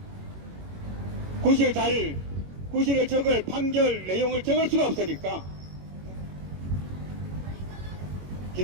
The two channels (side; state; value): left; late; 21 ms